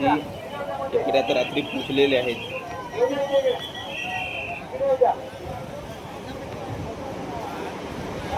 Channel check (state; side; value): identical; both; correlation 1.00